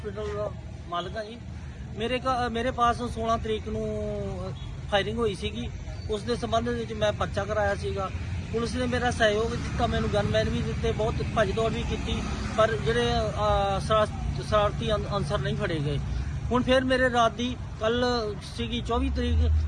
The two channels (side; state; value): both; identical; correlation 1.00